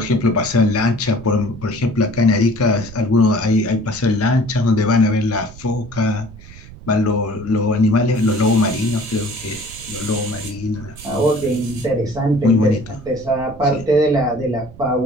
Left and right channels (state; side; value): noise; right; rumble, 17 dB below the sound